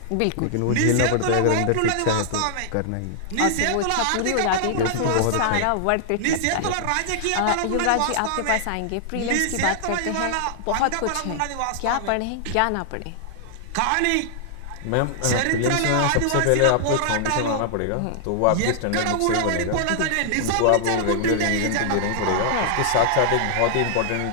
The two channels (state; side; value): different; both; correlation -0.01